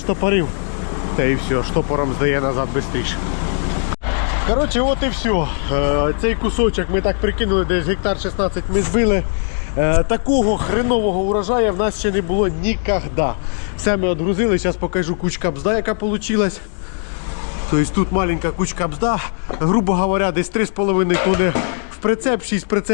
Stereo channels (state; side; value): silent; right; 60 dB below the other